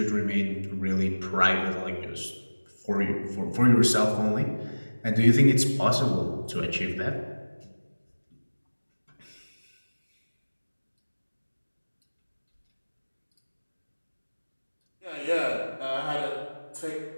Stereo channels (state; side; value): inverted; both; correlation -1.00